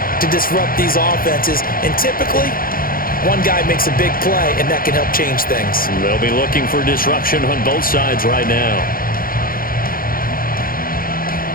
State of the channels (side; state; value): right; late; 0.42 ms